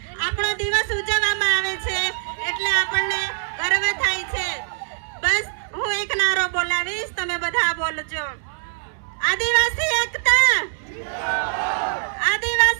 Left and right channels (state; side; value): silent; left; digital silence